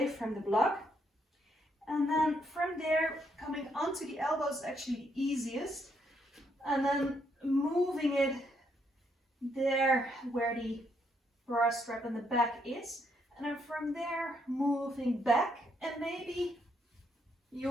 from the block. And then from there, coming onto the elbows is actually the easiest. And then moving it there where the bra strap in the back is. And then from there, moving back. And maybe you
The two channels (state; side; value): normal; both; correlation 0.74